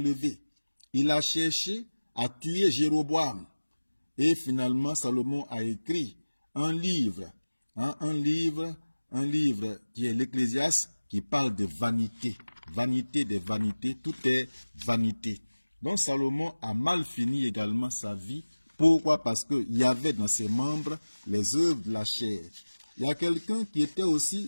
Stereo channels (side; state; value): both; inverted; correlation -1.00